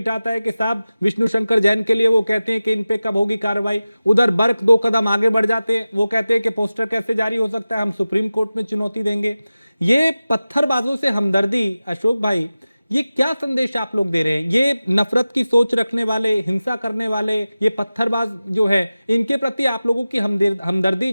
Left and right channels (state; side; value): inverted; both; correlation -0.96